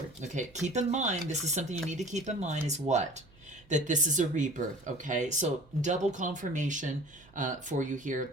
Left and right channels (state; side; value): noise; right; hum, 27 dB below the sound